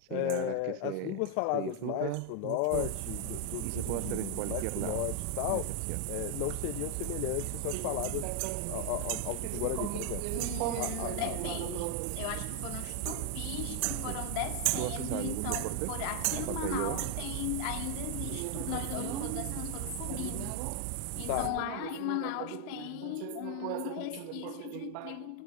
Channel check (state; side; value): different; both; correlation 0.00